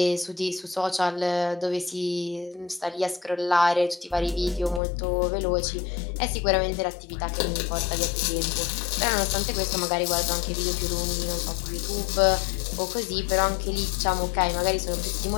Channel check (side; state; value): right; drops out; at 4.8 s